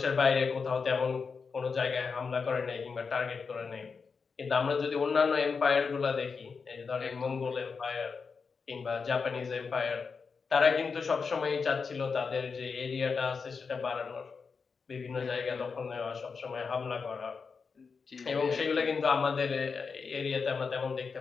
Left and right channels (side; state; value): right; quieter; 5.2 dB